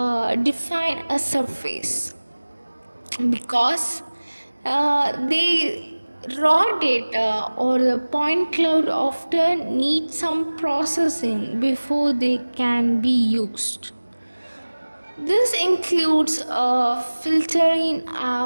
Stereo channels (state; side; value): inverted; both; correlation -1.00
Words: define a surface, because the raw data or the point cloud often need some processing before they can be used. This includes filtering